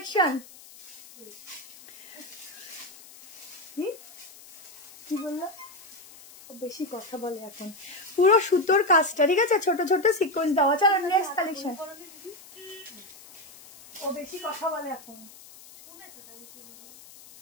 কি বললো? বেশি কথা বলে এখন। পুরো সুতোর কাজটা। ঠিক আছে ছোট ছোট সিকোয়েন্স দেওয়া। চলো নেক্সট কালেকশন। ও বেশি কথা বলে এখন।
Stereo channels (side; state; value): left; noise; hiss, 20 dB below the sound